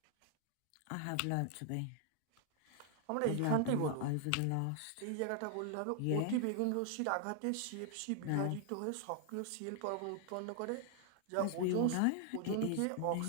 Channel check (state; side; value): different; both; correlation 0.00